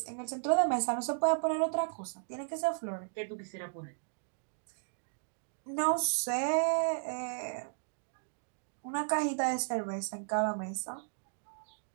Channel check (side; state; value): left; silent; digital silence